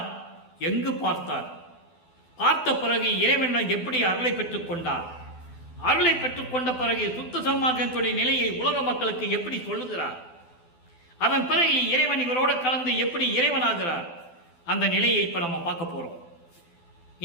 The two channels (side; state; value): right; late; 12 ms